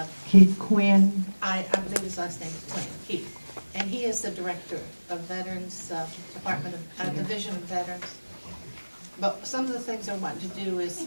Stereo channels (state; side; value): inverted; both; correlation -1.00